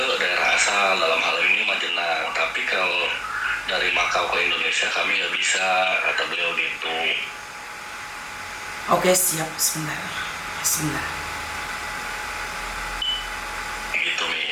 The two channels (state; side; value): identical; both; correlation 1.00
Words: daerah asal, dalam hal ini Majenang. Tapi kalau dari Makau ke Indonesia kami nggak bisa, kata beliau gitu. Oke, siap. Sebentar. Gitu,